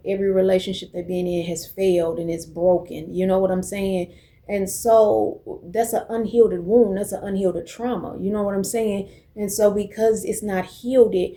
every relationship they've been in has failed and it's broken. You know what I'm saying? And so that's an unhealed wound, that's an unhealed trauma. You know what I'm saying? And so because it's not healed,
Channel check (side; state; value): both; identical; correlation 1.00